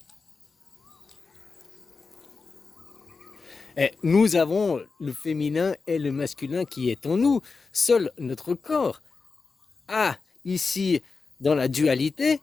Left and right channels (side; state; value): right; quieter; 4.5 dB